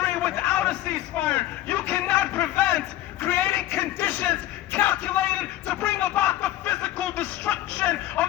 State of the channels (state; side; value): quieter; right; 14.4 dB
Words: without a ceasefire. You cannot prevent creating conditions calculated to bring about the physical destruction of